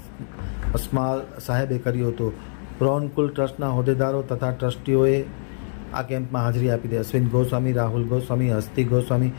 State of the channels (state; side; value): silent; right; digital silence